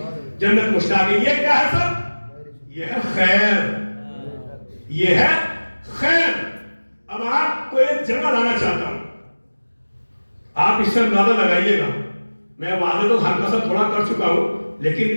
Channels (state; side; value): inverted; both; correlation -1.00